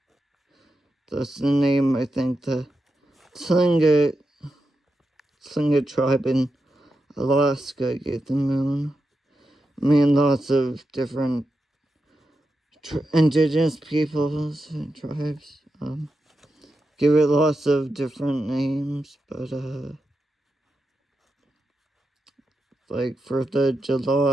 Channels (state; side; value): normal; both; correlation 0.88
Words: That's the name, I think, the Tlingit tribe in Alaska gave the moon. I mean, lots of different indigenous peoples and tribes give it lots of different names, but like for the